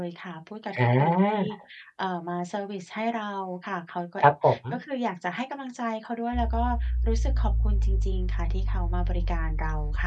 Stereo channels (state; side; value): identical; both; correlation 1.00